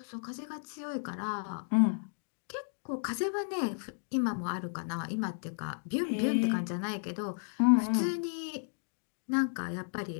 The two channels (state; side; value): silent; right; digital silence